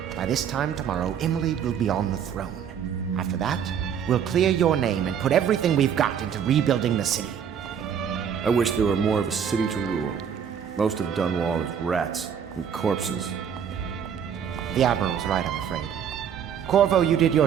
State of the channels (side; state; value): left; quieter; 8.1 dB